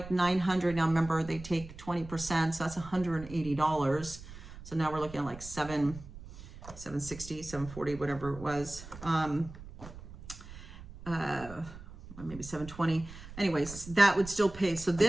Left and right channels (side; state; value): right; noise; rumble, 15 dB below the sound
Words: $900, now remember they take 20%, so that's $180. So now we're looking at like $760, $740, whatever it was. Maybe $720. Anyways, that would still pay. So